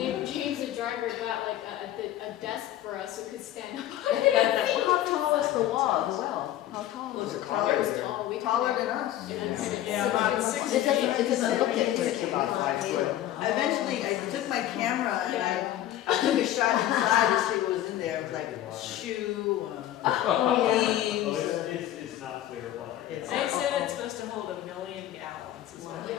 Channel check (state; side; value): quieter; right; 12.9 dB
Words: James the driver got like a desk for us so we could stand up. How tall is the wall, the well? How tall Was is it it? taller? It was tall. We Taller couldn't- than us. Yeah, about 6 It doesn't, feet. it doesn't look it. It's about 5 foot. Eventually, I took my camera and Yeah. I took a shot inside to see what was in there. It was like shoe, Oh, leaves. it's not clear water. It's- They said it's supposed to hold 1 million gallons is what they